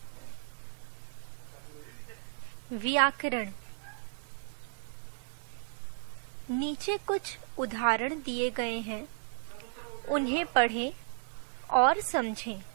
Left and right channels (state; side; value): silent; left; 55 dB below the other